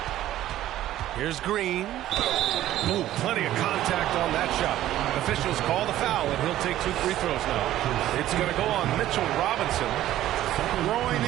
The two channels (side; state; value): left; quieter; 13.5 dB